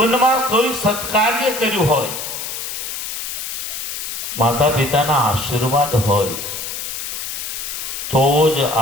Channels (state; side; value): noise; left; hiss, 6 dB below the sound